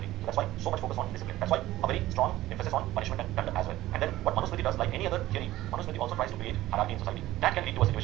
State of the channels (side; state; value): left; quieter; 15.7 dB